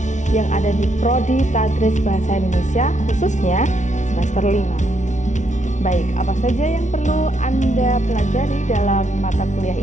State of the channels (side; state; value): right; late; 0.36 ms